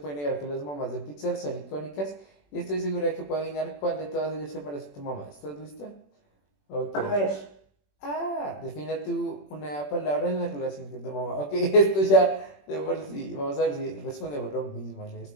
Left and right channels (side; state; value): right; late; 21 ms